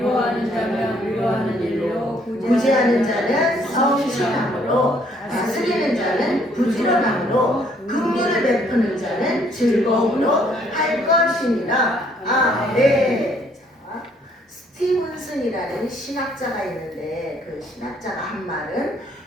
자면 위로하는 일로 구제하는 자는 성실함으로, 다스리는 자는 부지런함으로, 긍휼을 베푸는 자는 즐거움으로 할 것이니라. 아멘. 자, 스티븐슨이라는 신학자가 있는데 그 신학자가 한 말은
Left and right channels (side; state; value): both; normal; correlation 0.65